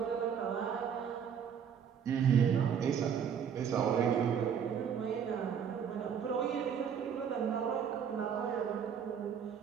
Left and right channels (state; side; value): quieter; left; 7.7 dB